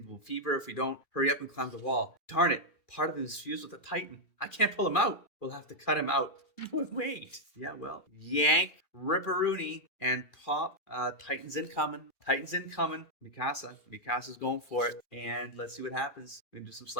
fever. If we don't hurry up and climb the wall. Darn it. Part of him is fused with a Titan. I can't pull him out. We'll have to cut him out. Wait. Yeah, well. Yank, ripperoonie, and pop. Titans incoming. Mikasa's going for it. And let's see what happens. We're going to do some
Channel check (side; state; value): right; late; 2.4 ms